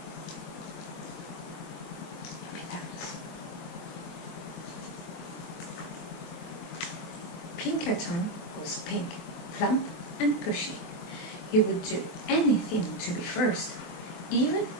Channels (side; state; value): right; late; 23 ms